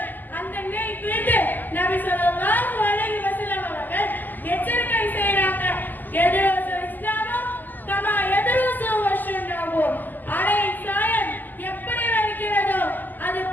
அந்த நிலை குறித்து நபி ஸல்லல்லாஹு அலைஹி வஸல்லம் அவர்கள் எச்சரிக்கை செய்றாங்க. எதுரசு இஸ்லாமோ கமா எதுரசு வஷன்னாவோ. அரை சாயம் எப்படி வருகிறதோ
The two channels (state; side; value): late; right; 0.086 ms